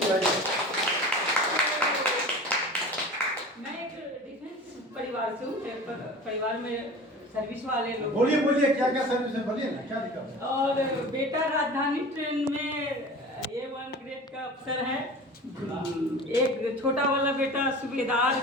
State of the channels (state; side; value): normal; both; correlation 0.37